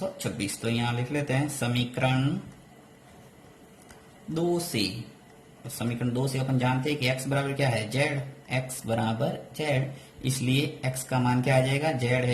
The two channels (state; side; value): identical; both; correlation 1.00